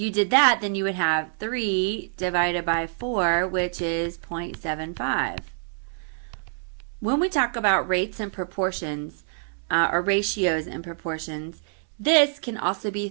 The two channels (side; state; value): left; silent; 61 dB below the other